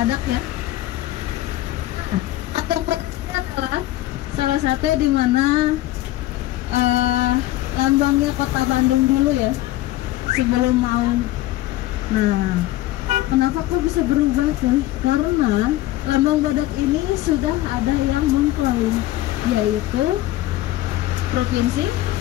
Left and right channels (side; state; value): right; quieter; 16.1 dB